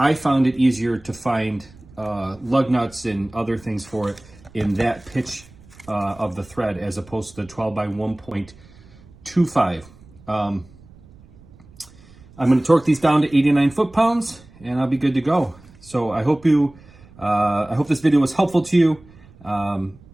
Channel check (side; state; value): right; noise; rumble, 24 dB below the sound